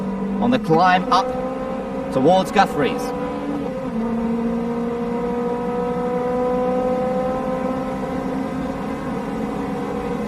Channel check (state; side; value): identical; both; correlation 1.00